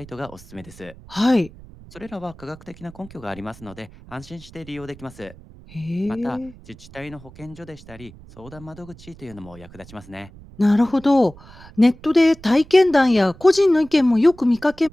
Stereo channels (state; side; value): noise; right; rumble, 20 dB below the sound